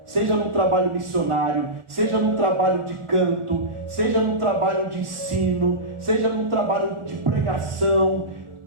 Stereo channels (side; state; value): left; late; 1.4 ms